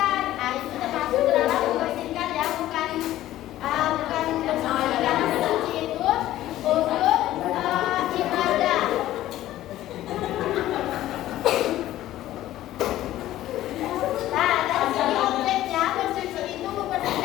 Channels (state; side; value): quieter; right; 14.3 dB